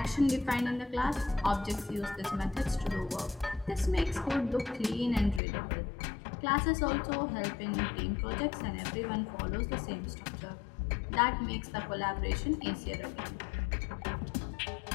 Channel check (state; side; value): drops out; right; at 5.4 s